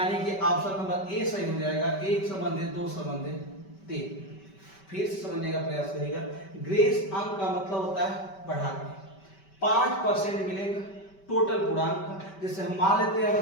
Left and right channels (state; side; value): late; right; 5.2 ms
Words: कि ऑप्शन नंबर ए सही हो जाएगा। 1 संबंध 2 संबंध 3। फिर से समझने का प्रयास करिएगा। ग्रेस अंक का मतलब होता है बढ़ाने। 5% मिलेगा टोटल पूरा अंक। जैसे हम मान लेते हैं